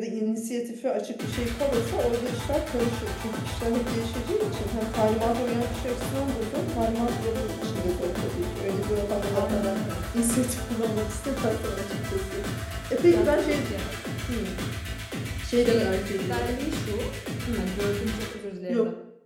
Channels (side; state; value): both; identical; correlation 1.00